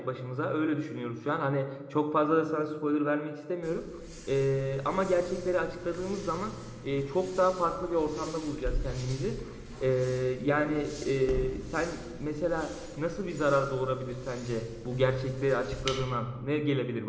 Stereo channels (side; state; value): both; identical; correlation 1.00